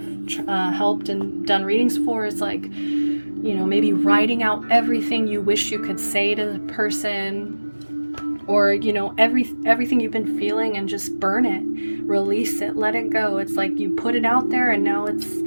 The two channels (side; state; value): both; inverted; correlation -1.00